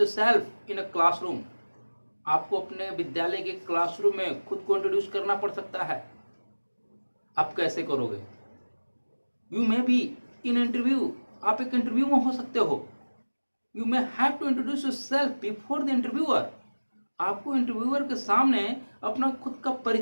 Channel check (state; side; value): inverted; both; correlation -1.00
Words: in a classroom. आपको अपने विद्यालय के क्लासरूम में खुद को इंट्रोड्यूस करना पड़ सकता है. आप कैसे करोगे? You may be in interview. आप एक इंटरव्यू में हो सकते हो. You may have to introduce yourself before the interviewer. आपको इंटरव्यूअर के सामने अपना खुद का